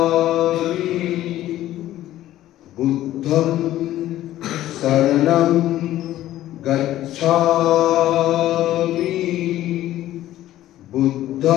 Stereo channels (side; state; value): right; quieter; 13.9 dB